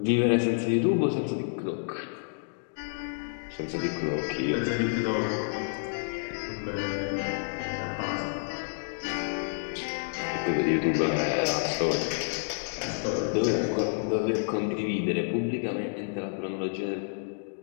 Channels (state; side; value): silent; right; digital silence